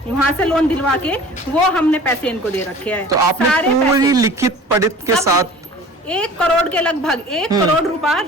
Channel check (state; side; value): normal; both; correlation 0.44